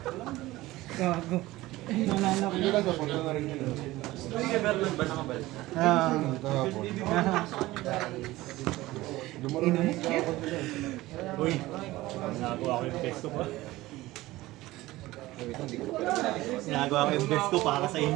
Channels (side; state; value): left; quieter; 18.0 dB